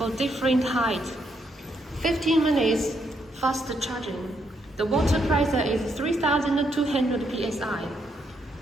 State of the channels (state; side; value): normal; both; correlation 0.76